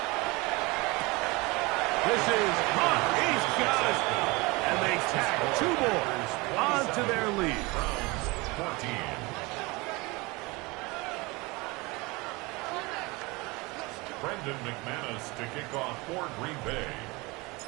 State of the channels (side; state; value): left; quieter; 24.6 dB